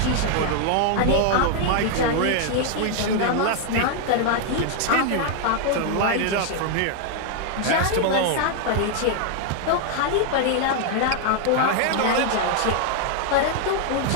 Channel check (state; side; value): different; both; correlation 0.00